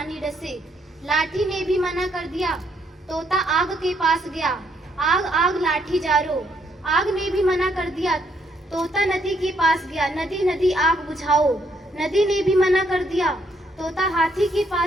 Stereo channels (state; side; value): normal; both; correlation 0.72